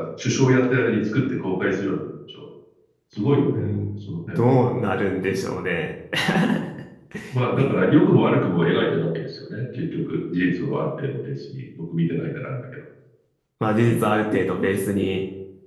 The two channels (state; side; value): identical; both; correlation 1.00